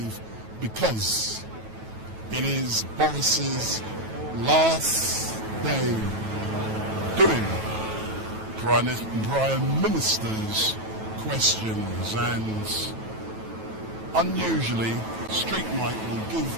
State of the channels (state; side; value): late; left; 9.2 ms